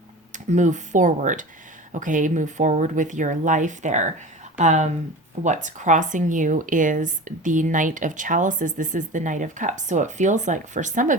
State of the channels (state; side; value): normal; both; correlation 0.34